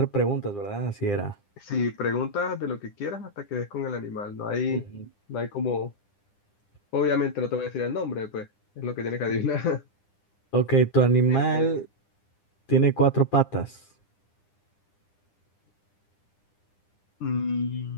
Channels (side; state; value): right; late; 9.9 ms